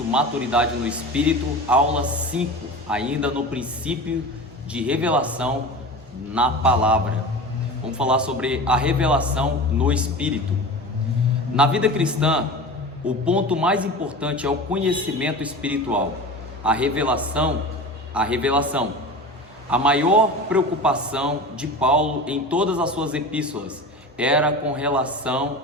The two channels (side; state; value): both; normal; correlation 0.32